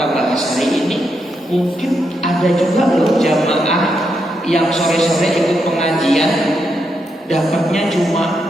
bahas hari ini, mungkin ada juga loh jamaah yang sore-sore ikut pengajian dapatnya cuma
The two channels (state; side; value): normal; both; correlation 0.82